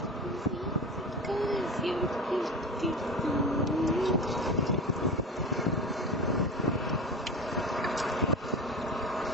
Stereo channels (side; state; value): both; normal; correlation 0.29